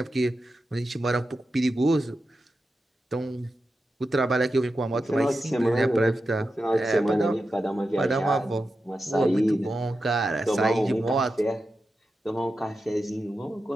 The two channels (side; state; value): both; normal; correlation 0.90